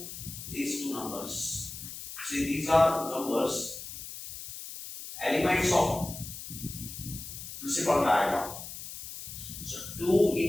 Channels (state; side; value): noise; left; hiss, 10 dB below the sound